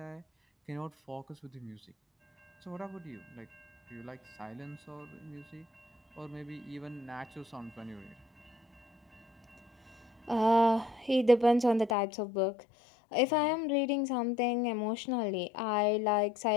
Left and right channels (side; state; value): right; drops out; at 12.0 s